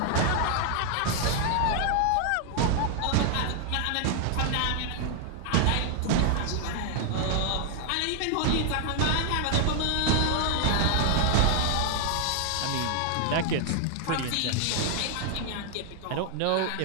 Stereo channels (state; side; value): different; both; correlation 0.00